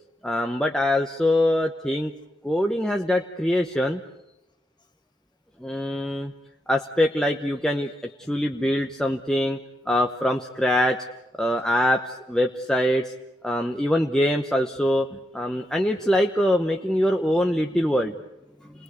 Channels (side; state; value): both; normal; correlation 0.84